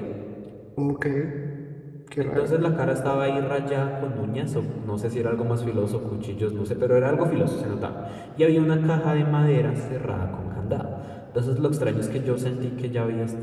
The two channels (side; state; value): both; identical; correlation 1.00